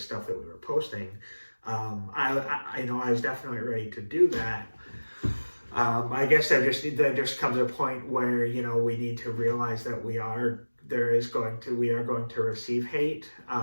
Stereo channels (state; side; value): inverted; both; correlation -1.00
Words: that we were posting. I was definitely ready to do that. I guess there just comes a point where, we need to realize that we are going to receive hate.